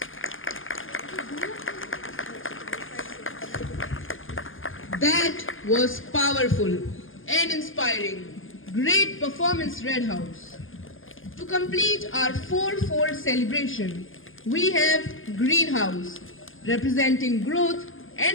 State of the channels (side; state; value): right; late; 0.58 ms